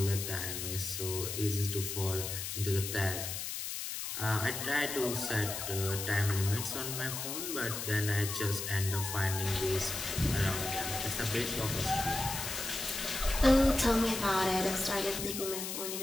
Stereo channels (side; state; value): left; noise; hiss, 5 dB below the sound